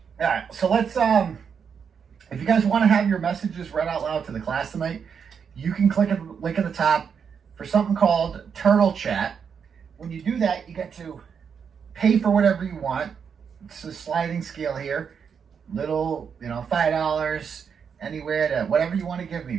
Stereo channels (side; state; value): left; quieter; 6.8 dB